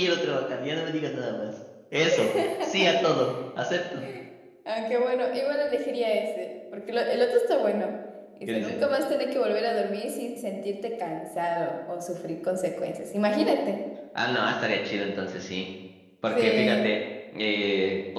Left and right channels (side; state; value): both; identical; correlation 1.00